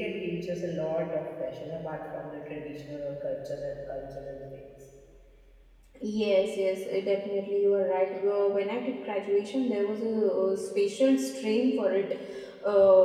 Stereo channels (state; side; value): identical; both; correlation 1.00